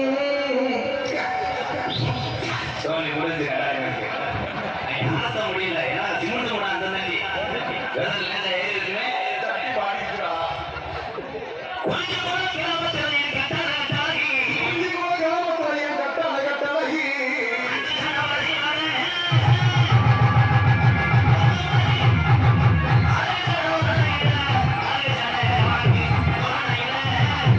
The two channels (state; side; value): identical; both; correlation 1.00